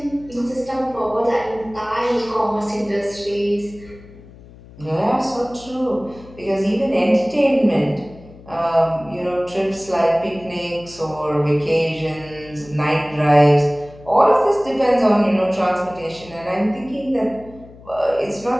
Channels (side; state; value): left; noise; hum, 21 dB below the sound